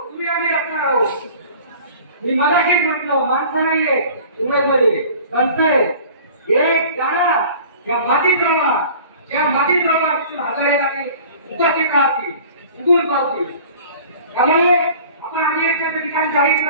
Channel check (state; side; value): inverted; both; correlation -0.45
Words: तुम्ही आम्ही रचणार आहोत. मी मगाशीच म्हटलं माणसं नाहीये इंग्रजमध्ये संत आहे. एक जाणार त्या मातीत रवा त्या मातीत रवा हजारेला उपस्थित राहतील उगून पावतील. त्यामुळे आपण अधिवेशनाचं ठिकाण जाहीर